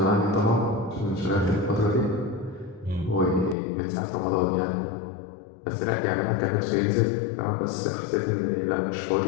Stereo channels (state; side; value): drops out; right; at 3.6 s